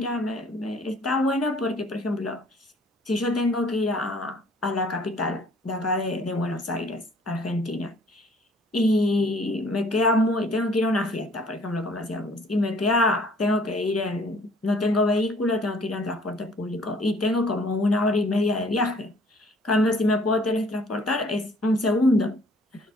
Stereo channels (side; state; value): both; normal; correlation 0.57